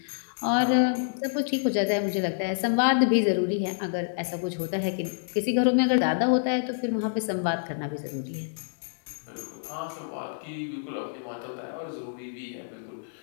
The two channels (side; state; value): right; silent; digital silence